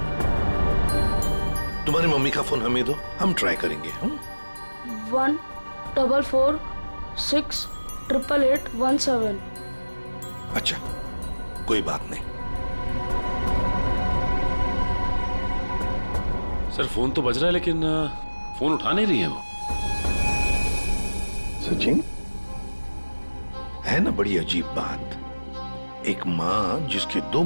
तुम्हारी मम्मी का फोन हमें दो, हम ट्राई करेंगे। 144688817। अच्छा कोई बात नहीं। सर फोन तो बज रहा है लेकिन फोन उठा नहीं रही है वो। सचिन, है ना बड़ी अजीब बात। एक माँ जिसके 2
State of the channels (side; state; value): both; inverted; correlation -1.00